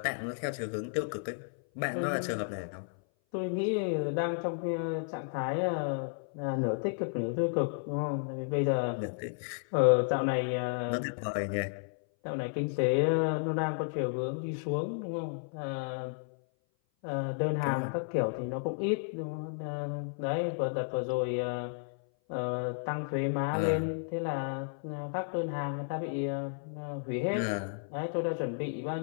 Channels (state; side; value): silent; right; 56 dB below the other